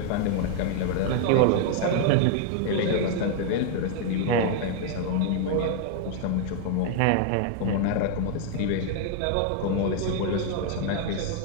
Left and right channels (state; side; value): different; both; correlation 0.00